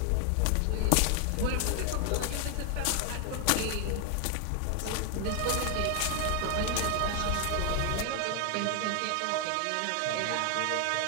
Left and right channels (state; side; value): different; both; correlation 0.00